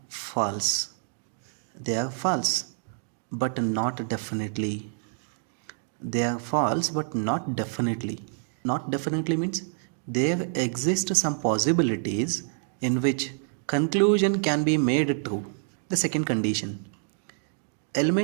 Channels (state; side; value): silent; left; 60 dB below the other